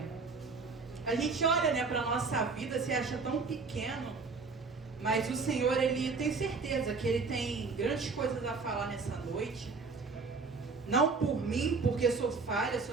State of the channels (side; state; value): left; quieter; 4.5 dB